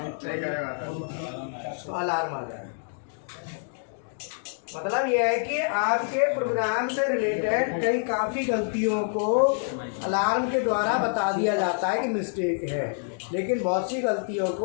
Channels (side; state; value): right; silent; digital silence